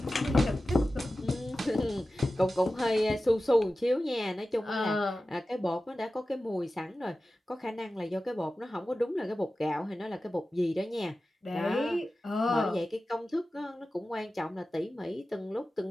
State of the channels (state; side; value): normal; both; correlation 0.95